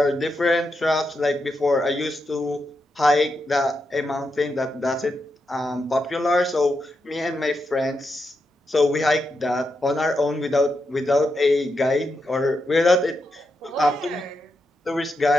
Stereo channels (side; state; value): both; normal; correlation 0.85